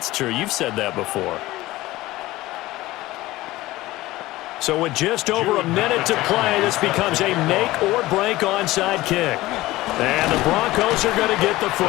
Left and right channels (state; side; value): quieter; right; 17.8 dB